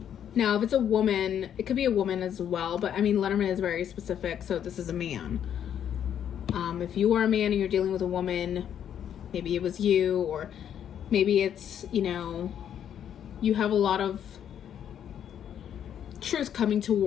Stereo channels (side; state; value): right; quieter; 9.4 dB